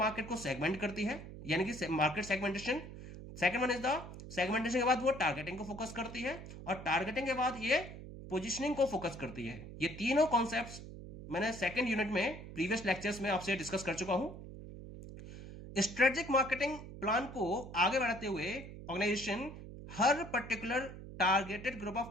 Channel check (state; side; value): noise; right; hum, 12 dB below the sound